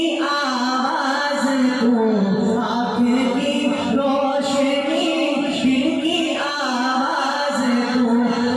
आवाज़ तू, आँख की रोशनी दिल की आवाज़ तू।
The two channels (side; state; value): both; identical; correlation 1.00